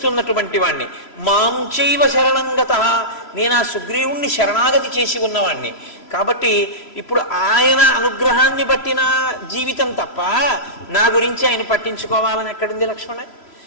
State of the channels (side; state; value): right; late; 3.0 ms